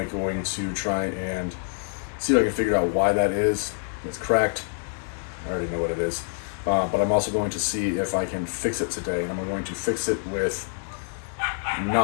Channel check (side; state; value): right; silent; digital silence